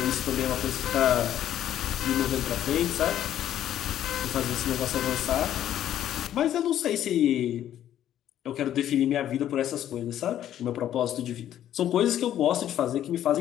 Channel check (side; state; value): right; quieter; 11.3 dB